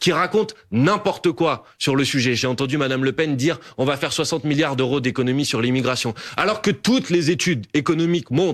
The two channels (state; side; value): identical; both; correlation 1.00